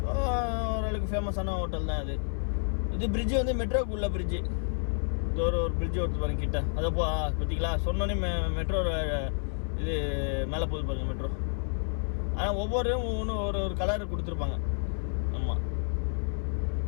ஓரளவுக்கு ஃபேமஸான ஹோட்டல் தான் அது. இது பிரிட்ஜு வந்து மெட்ரோக்கு உள்ள பிரிட்ஜு. இது ஒரு பிரிட்ஜு ஒருத்து பாருங்க கிட்ட. அதை பார்த்தீங்களா, சொன்னோன்னே மெட்ரோ இது மேலே போகுது பாருங்க மெட்ரோ. ஆனால் ஒவ்வொன்றும் ஒரு கலர் கொடுத்துருப்பாங்க. ஆமாம்,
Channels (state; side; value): silent; right; 58 dB below the other